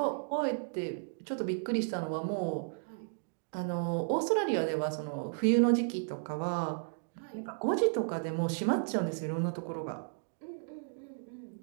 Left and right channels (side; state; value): left; silent; digital silence